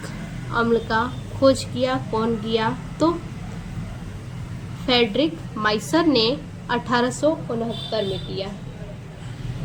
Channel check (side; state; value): both; identical; correlation 1.00